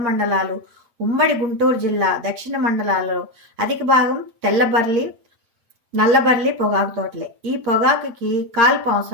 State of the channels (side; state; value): left; late; 8.6 ms